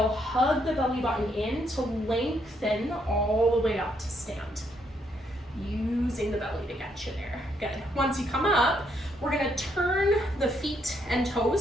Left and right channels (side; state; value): both; normal; correlation 0.74